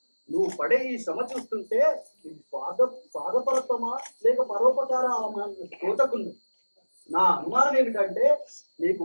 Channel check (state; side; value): inverted; both; correlation -1.00